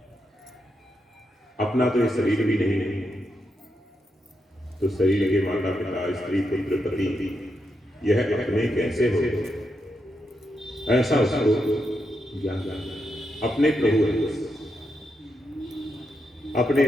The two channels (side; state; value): both; normal; correlation 0.83